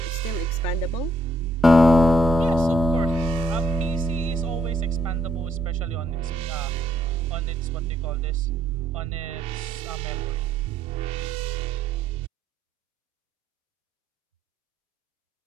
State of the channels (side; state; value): both; normal; correlation 0.71